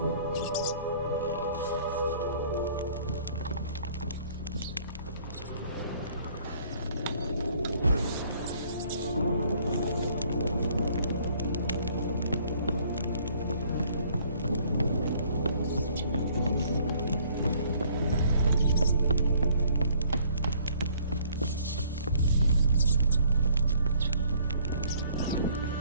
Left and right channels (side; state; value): both; inverted; correlation -0.60